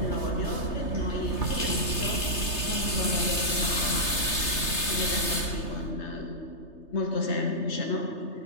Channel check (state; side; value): late; right; 3.3 ms